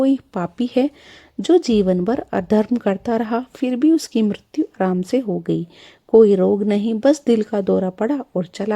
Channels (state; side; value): identical; both; correlation 1.00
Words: पापी है जो जीवन भर अधर्म करता रहा, फिर भी उसकी मृत्यु आराम से हो गई। कोई रोग नहीं, बस दिल का दौरा पड़ा और